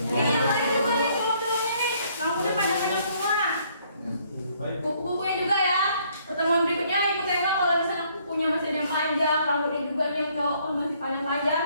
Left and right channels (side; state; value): both; inverted; correlation -0.66